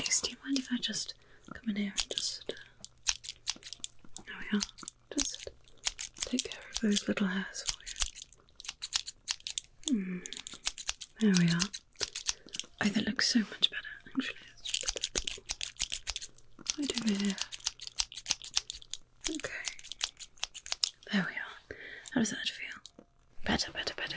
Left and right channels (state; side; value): identical; both; correlation 1.00